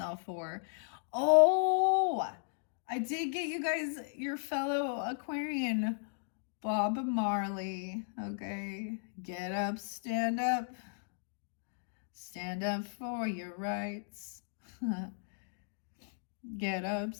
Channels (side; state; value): right; silent; digital silence